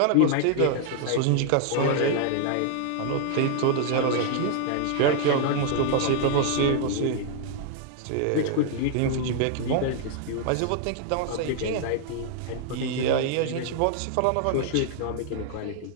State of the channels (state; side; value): different; both; correlation 0.00